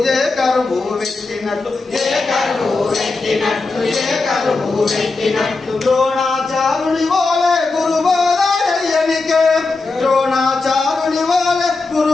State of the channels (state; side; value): quieter; right; 3.7 dB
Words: ఏ కరువు పెట్టినట్లు, ఏ కరువు పెట్టినట్లు, ఏ కరువు పెట్టినట్లు, ద్రోణాచారుని వోలే గురుబోధయనికే, ద్రోణాచారుని వోలే